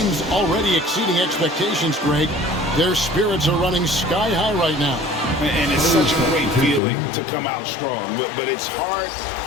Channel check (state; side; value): drops out; right; at 6.8 s